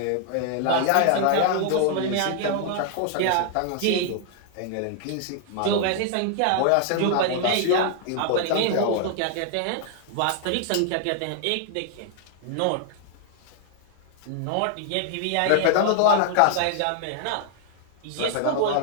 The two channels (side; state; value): both; different; correlation 0.00